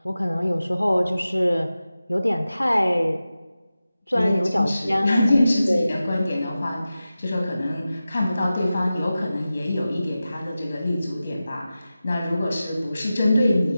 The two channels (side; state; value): both; inverted; correlation -0.94